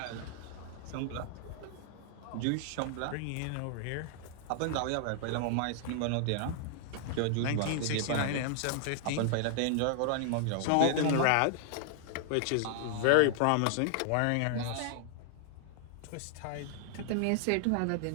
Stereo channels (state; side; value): different; both; correlation 0.00